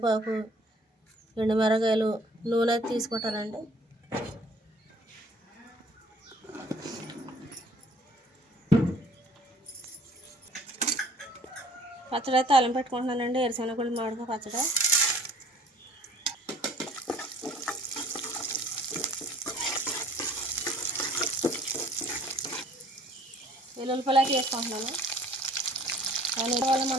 ఎండుమిరగాయలు, నూనె అయితే తీసుకుంటానండి. పచ్చడి అయితే తాలింపు పెట్టుకుంటున్నానండి. ఎరుశనగగుళ్ళు, మామిడికాయ పచ్చడి. వెల్లుల్లిపాయలు అయితే వేసుకుంటున్నాను. దాని వల్ల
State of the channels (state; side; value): normal; both; correlation 0.55